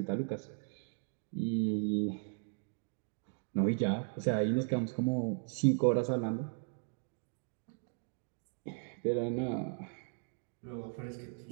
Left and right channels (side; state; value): left; silent; 53 dB below the other